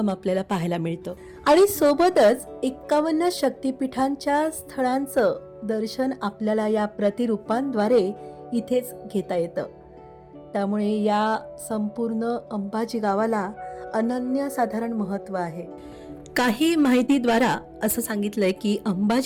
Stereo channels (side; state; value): both; identical; correlation 1.00